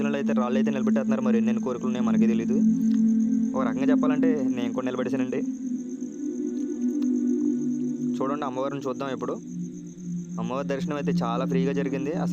అయితే రాళ్ళు అయితే నిలబెట్టేస్తున్నారు. మరి ఎన్నెన్ని కోరికలు ఉన్నాయో మనకే తెలీదు. ఒక రకంగా చెప్పాలంటే నేను కూడా నిలబెట్టేశానండి. చూడండి అమ్మవారిని చూద్దాం ఇప్పుడు. అమ్మవారి దర్శనం అయితే చాలా ఫ్రీగా జరిగింది.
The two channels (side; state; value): both; identical; correlation 1.00